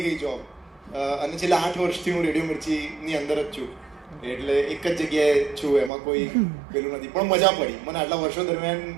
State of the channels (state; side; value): drops out; left; at 5.9 s